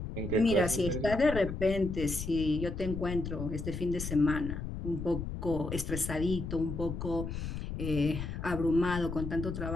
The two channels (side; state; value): left; noise; rumble, 6 dB below the sound